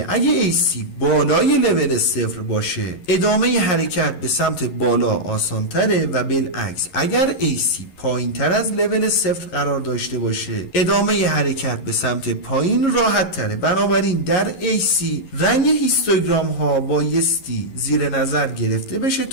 اگه AC بالای لول 0 باشه ادامه حرکت به سمت بالا آسانتره و بالعکس اگر AC پایین تر از لول 0 قرار داشته باشه ادامه حرکت به سمت پایین راحت تره. بنابراین در AC رنگ هیستوگرام ها بایستی زیر نظر گرفته بشه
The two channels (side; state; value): right; late; 11 ms